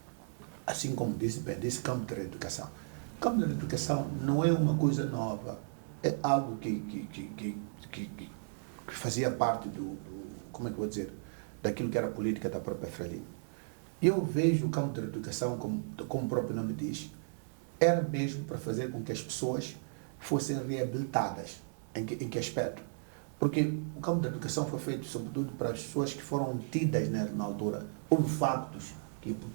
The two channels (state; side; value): silent; left; digital silence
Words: assim como disse campo da reeducação. O campo da reeducação não é uma coisa nova, é algo que fazia parte como é que eu vou dizer, daquilo que era a política da própria Frelimo. Eu vejo o campo da educação, como o próprio nome diz, era mesmo para fazer com que as pessoas fossem reabilitadas. Em que aspecto? Porque o campo da educação foi feito sobretudo para as pessoas que foram tidas na altura. Houve factos que